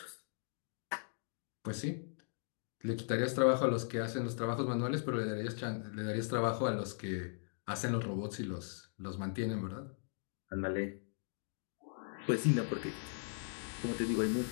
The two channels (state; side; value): silent; right; digital silence